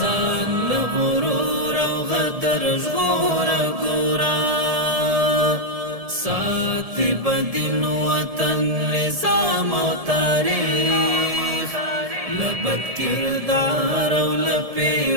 له غرور او غدر ژغور ګورا ساتي بدین وطن نظام او تاریخ لبد کردار او لپی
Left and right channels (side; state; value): left; late; 1.7 ms